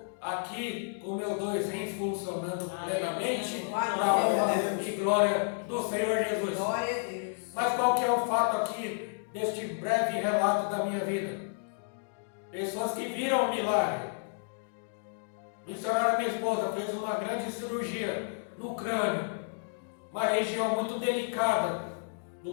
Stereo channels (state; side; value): silent; right; digital silence